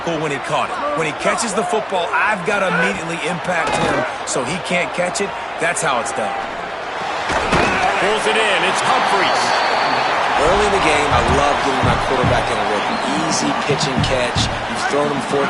when he caught it. When he catches the football, I've got to immediately impact him so he can't catch it. That's how it's done. Pulls it in. It's Humphries. Early in the game, I love getting my quarterback in a rhythm. Easy pitch and catch. You've thrown him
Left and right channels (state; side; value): identical; both; correlation 1.00